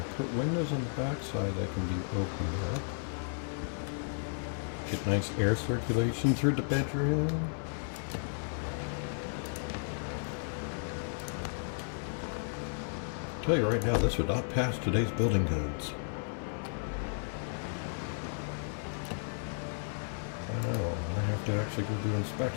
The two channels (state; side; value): silent; right; digital silence